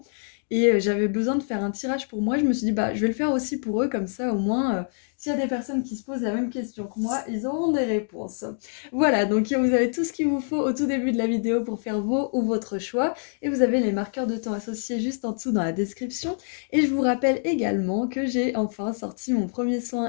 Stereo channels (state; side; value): silent; right; digital silence